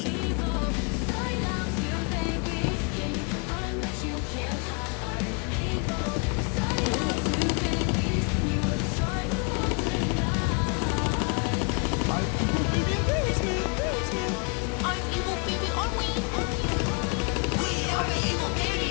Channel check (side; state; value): right; quieter; 34.9 dB